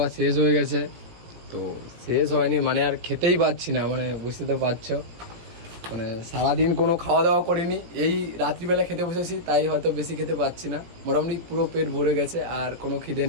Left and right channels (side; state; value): left; late; 17 ms